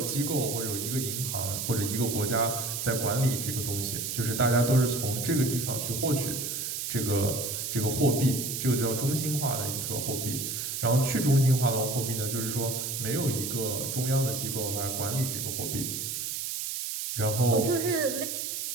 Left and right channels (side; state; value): right; noise; hiss, 3 dB below the sound